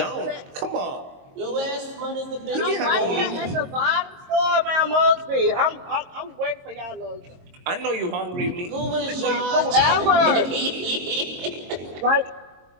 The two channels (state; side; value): late; left; 22 ms